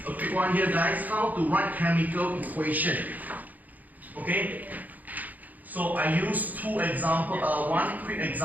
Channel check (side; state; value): left; late; 0.081 ms